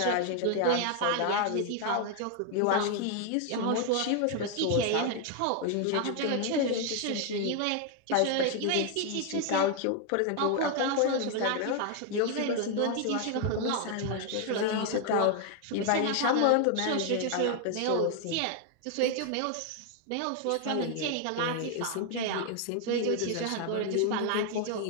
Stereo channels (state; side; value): different; both; correlation 0.00